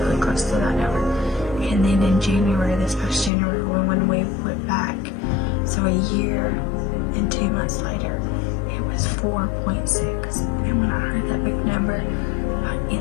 close to that number. And then in January, this past January, when we went back, so a year and 2 months later, it was 4.6. And when I heard that big number,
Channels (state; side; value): drops out; right; at 3.3 s